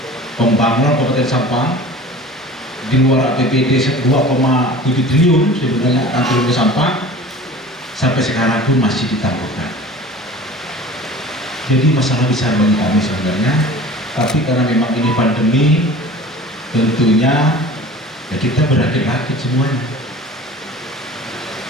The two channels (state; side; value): normal; both; correlation 0.41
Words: pembangunan Kabupaten Sampang di luar APBD 2,7 triliun sebenarnya antara Sampang, sampai sekarang pun masih ditangguhkan. Jadi masalah besar bagi kami sebenarnya, tapi karena memang ini pandemi, tentunya ya kita berakit-rakit semuanya.